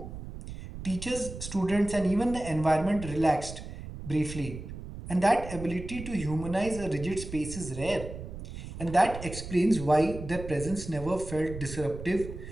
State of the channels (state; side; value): noise; right; rumble, 10 dB below the sound